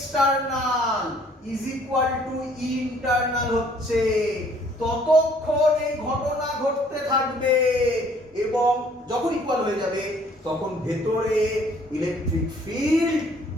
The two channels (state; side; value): normal; both; correlation 0.60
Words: is equal to E internal হচ্ছে, ততক্ষণ এই ঘটনা ঘটতে থাকবে। এবং যখন ইকুয়াল হয়ে যাবে তখন ভেতরে ইলেকট্রিক ফিল্ড